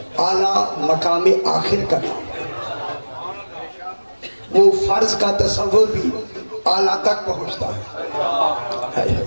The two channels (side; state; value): both; inverted; correlation -1.00